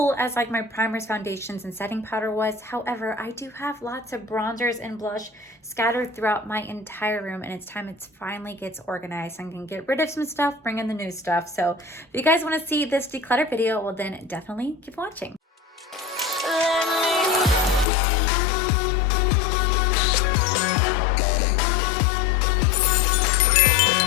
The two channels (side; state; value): right; drops out; at 17.9 s